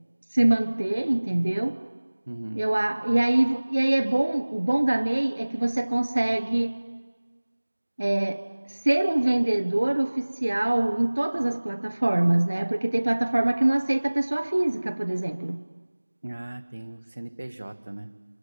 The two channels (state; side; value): inverted; both; correlation -1.00